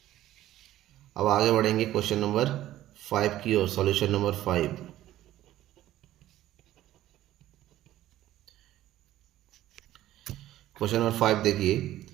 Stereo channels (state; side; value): quieter; left; 14.0 dB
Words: अब आगे बढ़ेंगे क्वेश्चन नंबर 5 की ओर, सॉल्यूशन नंबर 5। क्वेश्चन नंबर 5 देखिए,